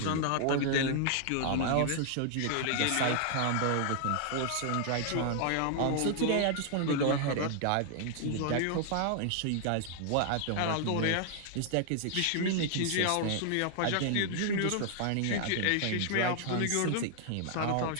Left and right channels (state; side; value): different; both; correlation 0.00